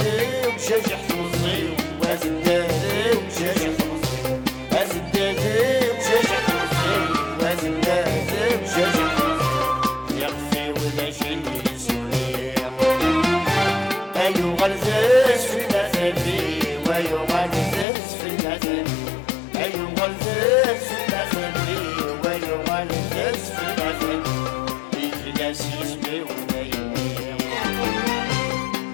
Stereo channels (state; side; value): drops out; right; at 17.9 s